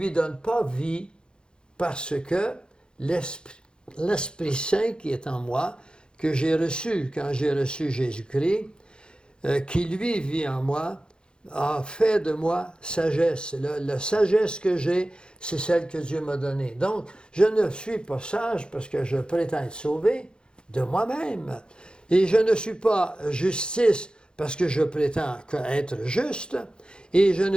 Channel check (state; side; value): late; right; 0.049 ms